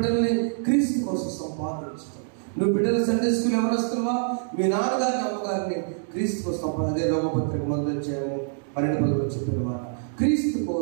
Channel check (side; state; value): left; silent; digital silence